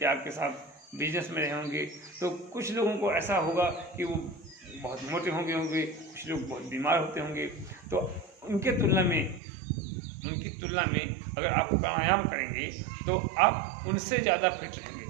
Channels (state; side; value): drops out; left; at 9.4 s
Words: या आपके साथ बिजनेस में रहे होंगे, तो कुछ लोगों को ऐसा होगा कि वो बहुत मोटे होंगे, कुछ लोग बहुत बीमार होते होंगे। तो उनकी तुलना में अगर आप प्राणायाम करेंगे तो आप उनसे ज़्यादा फिट